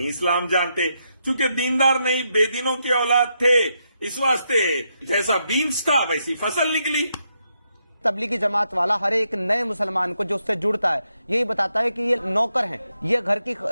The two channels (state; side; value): inverted; both; correlation -0.81